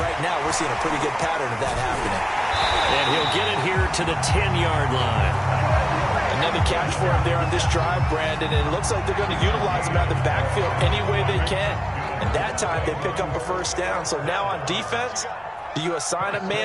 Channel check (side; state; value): both; identical; correlation 1.00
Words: right now we're seeing a pretty good pattern of that happening. And he'll get it here to the 10-yard line. Another catch for him there on this drive, Brandon, and it looks like they're going to utilize him out of the backfield any way they can. And that time they pick up a first down. So now on defense, do you assign a